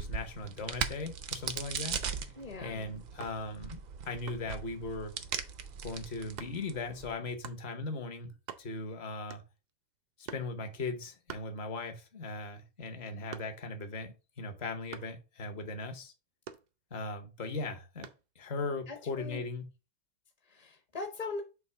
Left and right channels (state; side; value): late; left; 2.0 ms